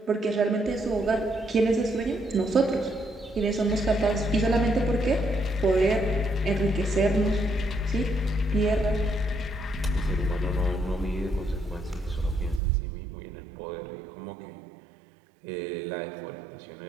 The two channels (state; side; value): drops out; left; at 12.6 s